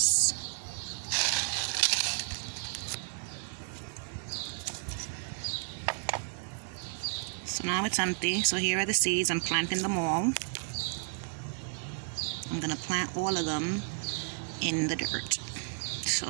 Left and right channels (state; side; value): silent; left; 56 dB below the other